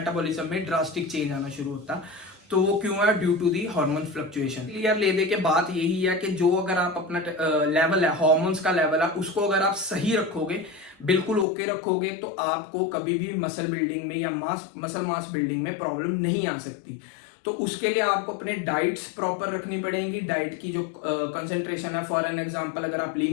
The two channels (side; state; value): right; drops out; at 11.5 s